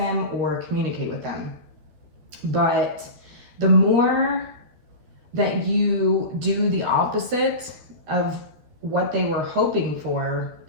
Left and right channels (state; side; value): late; left; 13 ms